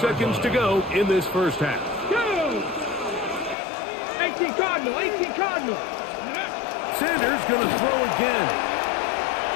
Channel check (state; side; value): drops out; right; at 3.6 s